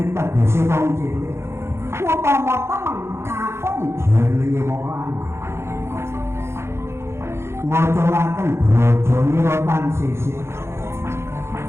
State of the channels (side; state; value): left; late; 0.13 ms